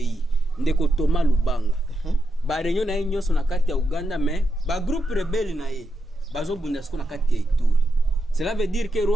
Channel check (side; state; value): both; normal; correlation 0.85